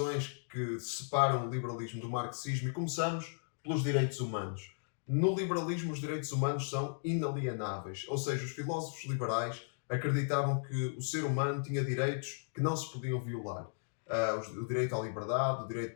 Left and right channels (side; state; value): right; silent; digital silence